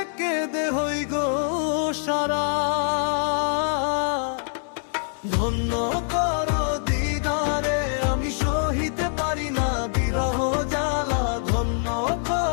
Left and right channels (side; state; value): right; silent; digital silence